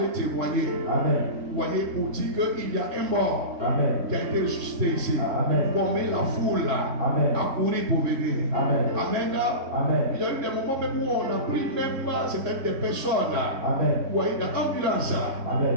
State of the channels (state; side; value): late; left; 3.6 ms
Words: témoigner. Amen. Vous voyez, pour dire qu'il y a un mort Amen. qui a été ressuscité ici. Amen. Pour mettre la foule là Amen. à courir pour venir. Amen. Amen. Amen. Il y a eu des moments même où on a pris même certaines des personnes. Amen. Vous voyez, dans l'ambulance. Amen.